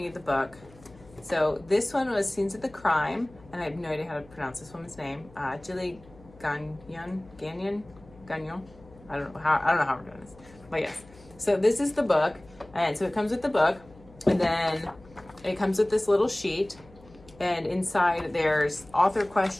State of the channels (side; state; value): left; noise; hum, 24 dB below the sound